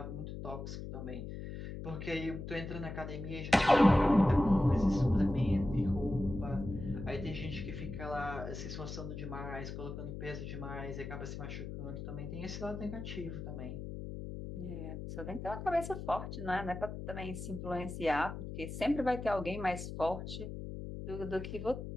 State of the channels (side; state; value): left; noise; hum, 7 dB below the sound